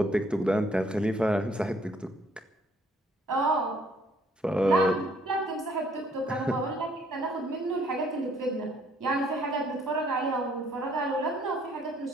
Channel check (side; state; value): both; normal; correlation 0.64